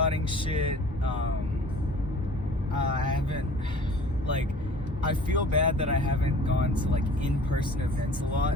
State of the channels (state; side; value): normal; both; correlation 0.47